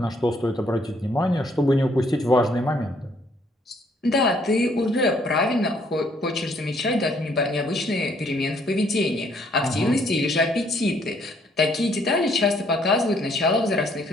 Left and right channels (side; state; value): both; normal; correlation 0.66